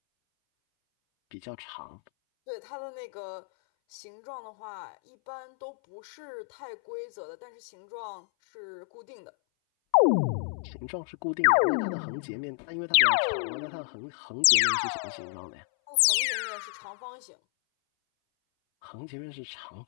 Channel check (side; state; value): right; silent; 58 dB below the other